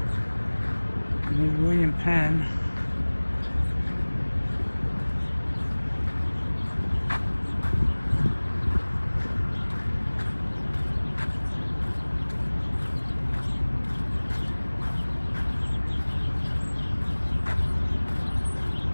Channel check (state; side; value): inverted; both; correlation -1.00